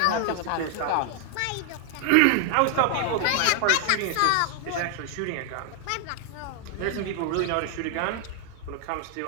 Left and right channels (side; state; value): both; different; correlation 0.00